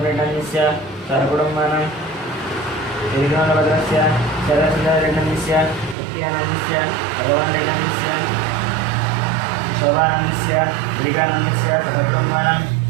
सहकुटुम्बानां श्रीकृष्णभद्रस्य शरसुन्दररेड्डनन्दस्य नित्यानन्दस्य भगवानरेड्डनन्दस्य शोभानन्दस्य गिरिकानन्दस्य सहकुटुम्बानां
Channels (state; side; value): drops out; left; at 6.0 s